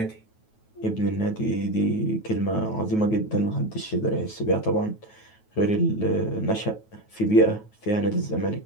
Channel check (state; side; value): late; right; 9.3 ms